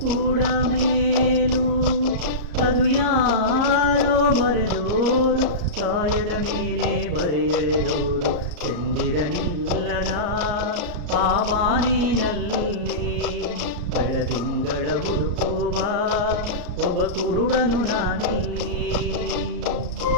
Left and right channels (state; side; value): late; left; 34 ms